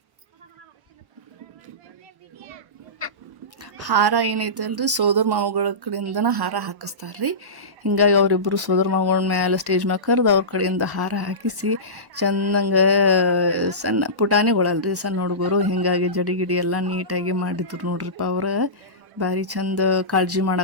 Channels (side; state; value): left; late; 1.1 ms